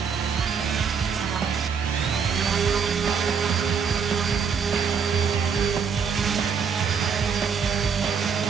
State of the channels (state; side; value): quieter; left; 6.3 dB